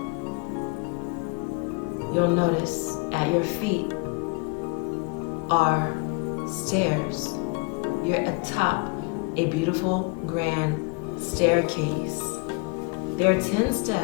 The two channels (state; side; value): quieter; right; 30.4 dB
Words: you'll notice at your feet are stairs. You're atop a beautiful grand staircase. There are 10